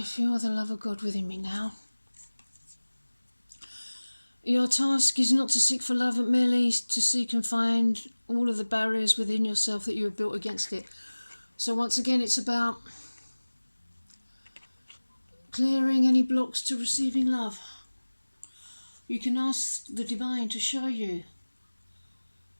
feel the love of God within me now. Your task is not to seek for love, but merely to seek and find all of the barriers within yourself that you have built against it. So once again, it's about clearing any blocks to receiving love. You can ask the divine to show you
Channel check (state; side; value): inverted; both; correlation -1.00